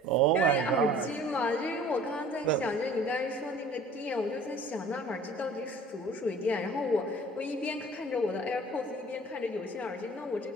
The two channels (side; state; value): both; normal; correlation 0.49